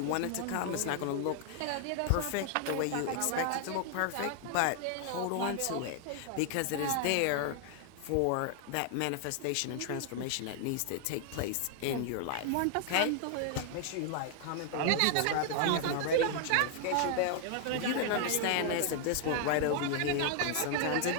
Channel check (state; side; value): different; both; correlation 0.00